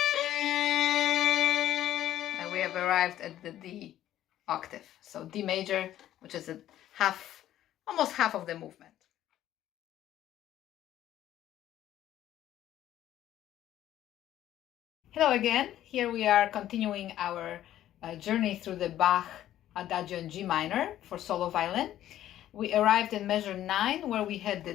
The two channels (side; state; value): right; quieter; 12.5 dB